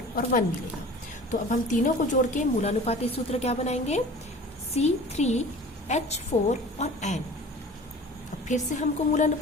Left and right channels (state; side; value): normal; both; correlation 0.42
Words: और 1 मिलेगा। तो अब हम तीनों को जोड़ के मूलानुपाती सूत्र क्या बनाएंगे, C3H4 और N। अब फिर से हमको